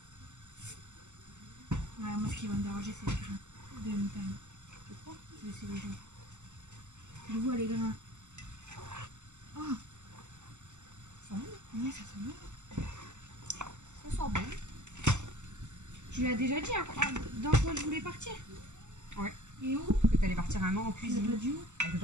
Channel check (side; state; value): left; late; 0.84 ms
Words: Ouais, moi ce qui va me déranger c'est les grains de moutarde. Tu crois? C'est les gens. Je vois les grains. Oh! Ça sent bon. Ouais, ça sent bon. Ça sent bon. Tu l'as déjà dit, hein, dans quoi je voulais partir? Ouais. Et où? Que tu allais partir un an en cuisine. Tu l'as pas dit où? Elle veut